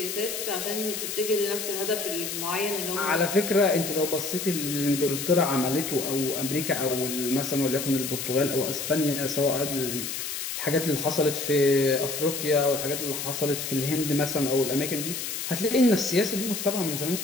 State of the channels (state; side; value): noise; left; hiss, 5 dB below the sound